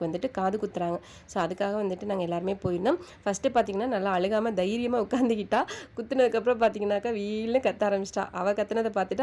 வந்துட்டு காது குத்துறாங்க. ஸோ அதுக்காக வந்துட்டு நாங்கள் எல்லாருமே போயிருந்தோம். ஃபஸ்ட்டு பார்த்தீங்கன்னா நல்லா அழுகாமல் தைரியமாக உட்காந்துக்கிட்டா. குத்துனதுக்கப்புறம் பார்த்தீங்கன்னாக்கா வீல்னு கத்த ஆரம்பிச்சிட்டா. அவள் கத்துனதை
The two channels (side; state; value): both; identical; correlation 1.00